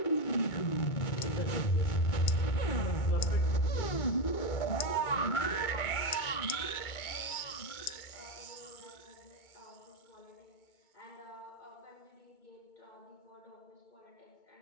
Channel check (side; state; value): right; late; 2.2 ms